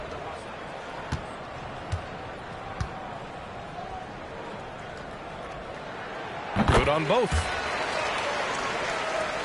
Good on both.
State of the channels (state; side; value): identical; both; correlation 1.00